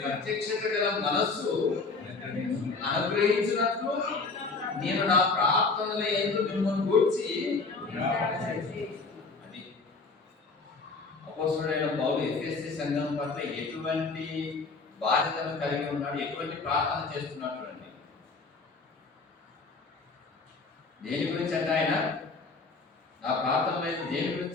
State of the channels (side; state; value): right; quieter; 4.1 dB